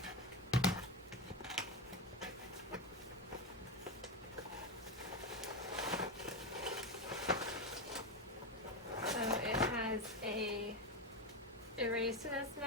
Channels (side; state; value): both; normal; correlation 0.14